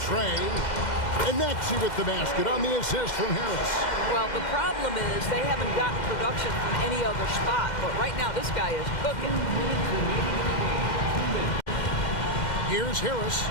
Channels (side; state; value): right; late; 2.1 ms